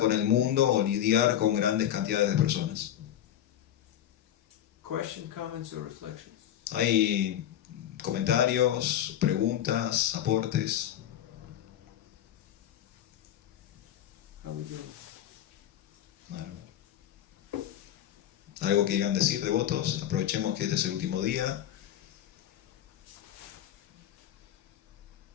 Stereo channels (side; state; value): right; quieter; 11.3 dB